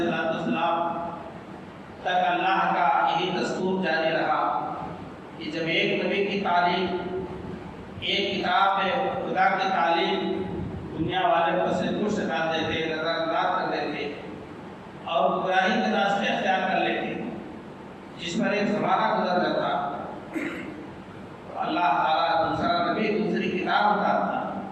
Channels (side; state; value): both; identical; correlation 1.00